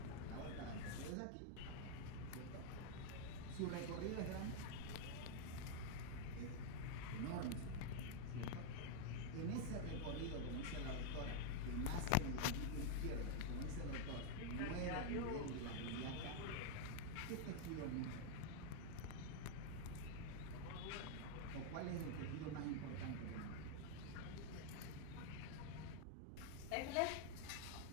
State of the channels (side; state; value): both; different; correlation 0.00